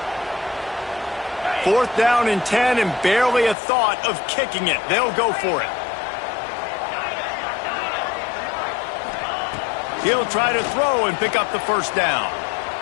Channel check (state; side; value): drops out; right; at 3.6 s